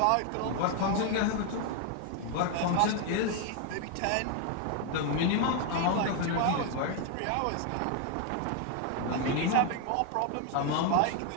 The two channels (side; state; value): both; different; correlation 0.01